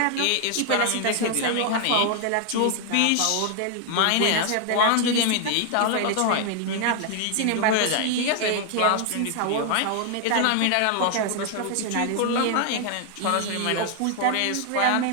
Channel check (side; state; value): both; different; correlation 0.00